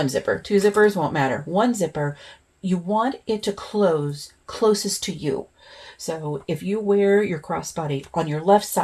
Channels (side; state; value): both; identical; correlation 1.00